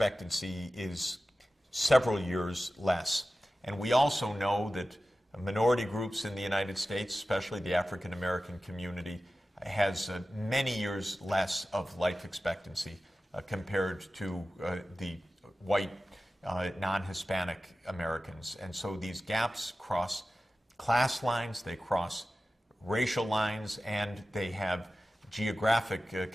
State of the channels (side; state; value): both; normal; correlation 0.95